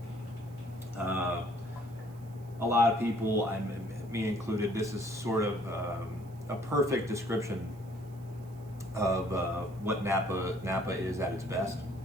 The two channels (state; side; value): noise; right; hiss, 28 dB below the sound